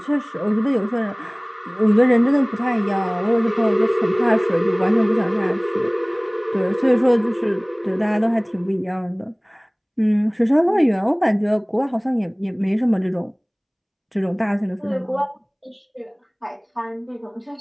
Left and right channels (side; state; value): both; identical; correlation 1.00